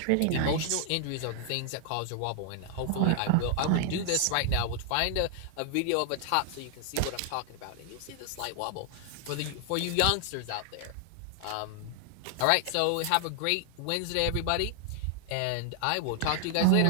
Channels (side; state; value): both; different; correlation 0.00